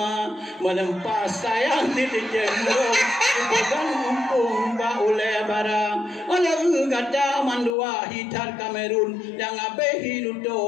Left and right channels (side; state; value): right; drops out; at 7.8 s